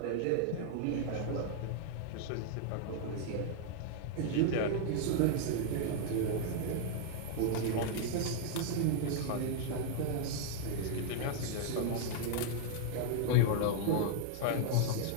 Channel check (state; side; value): different; both; correlation 0.00